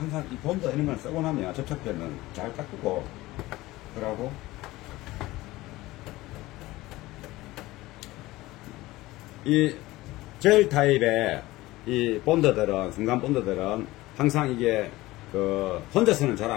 이 본드 이런 걸 쓰고 나면 접착제는 잘 닦고 그러고 이 젤 타입의 이 본드들은, 순간 본드들은 항상 이게 혼자서는 잘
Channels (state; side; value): quieter; right; 18.6 dB